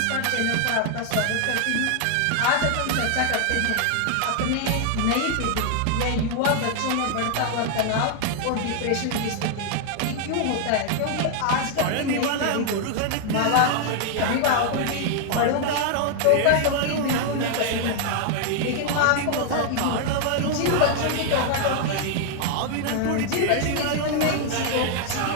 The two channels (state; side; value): different; both; correlation 0.00